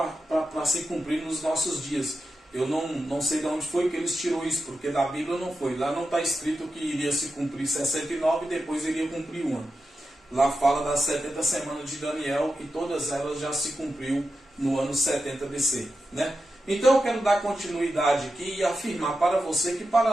se cumprir nos nossos dias. Eu não sei de onde foi que eles tirou isso, porque da Bíblia não foi. Lá não está escrito que iria se cumprir 69 e depois iria cumprir uma. Lá fala das 70 semanas de Daniel e todas elas já se cumpriu no ano 70 BC, né? Então eu quero dar continuidade aqui e afirmar para você que para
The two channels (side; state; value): both; normal; correlation 0.90